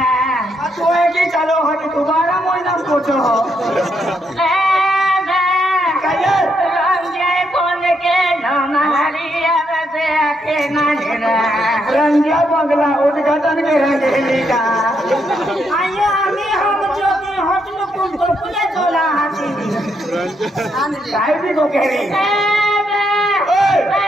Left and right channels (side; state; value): both; normal; correlation 0.77